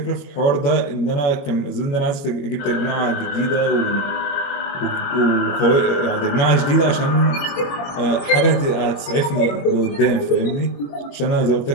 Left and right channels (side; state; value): right; late; 21 ms